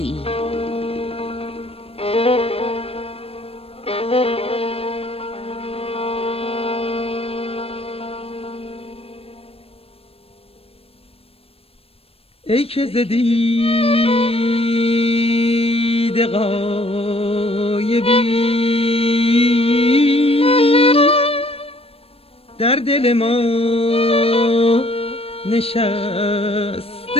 ای. ای که ز دید غایبی در دل ما نشسته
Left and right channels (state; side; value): late; right; 0.28 ms